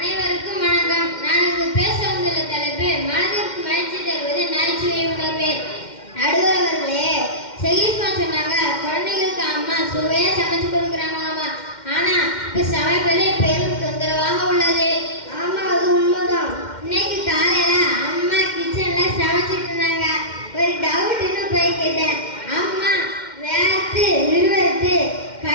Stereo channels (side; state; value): right; late; 2.1 ms